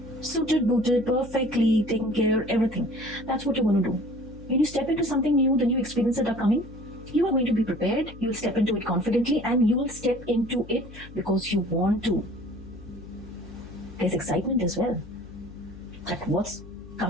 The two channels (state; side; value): noise; left; hum, 17 dB below the sound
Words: Suited, booted, perfectly taken care, everything. That's what you're going to do. When you step into something new, the new experiences that are coming, you are going to be prepared. You'll step into it confidently and you will step into it because you want to. There's excitement as well. At what's